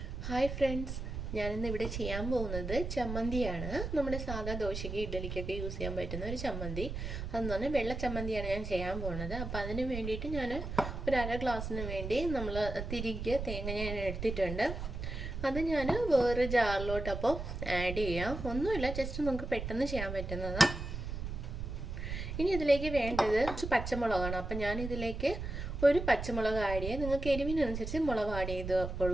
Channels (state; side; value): noise; right; rumble, 5 dB below the sound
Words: Hi friends, ഞാനിന്ന് ഇവിടെ ചെയ്യാൻ പോകുന്നത് ചമ്മന്തിയാണ്. നമ്മുടെ സാധാ ദോശയ്ക്ക് ഇഡ്ഡലിക്കൊക്കെ യൂസ് ചെയ്യാൻ പറ്റുന്ന ഒരു ചമ്മന്തി. അതെന്ന് പറഞ്ഞാൽ വെള്ള ചമ്മന്തിയാണ് ഞാൻ ചെയ്യാൻ പോകുന്നത്. അപ്പോൾ അതിന് വേണ്ടിയിട്ട് ഞാൻ ഒരു അര ഗ്ലാസ്സിന് വേണ്ടി നമ്മൾ തിരികെ തേങ്ങ ഞാൻ എടുത്തിട്ടുണ്ട്. അത് ഞാൻ വേറെ ജാറിലോട്ട് അപ്പോൾ ആഡ് ചെയ്യാം. ഒന്നുമില്ല, ജസ്റ്റ് നമുക്ക് പെട്ടെന്ന് ചെയ്യാൻ പറ്റുന്നതാണ്. ഇനി ഇതിലേക്ക് വേണ്ടത് പച്ചമുളകാണ്. അപ്പം ഞാൻ ഇതിലേക്ക് ഒരു പച്ചമുളക് ആഡ് ചെയ്യുക. നിങ്ങൾക്ക് എരിവിനനുസരിച്ച് മുളക് ആഡ് ചെയ്ത്